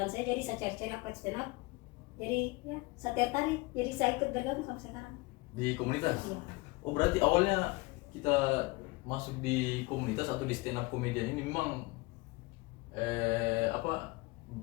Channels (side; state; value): right; quieter; 23.8 dB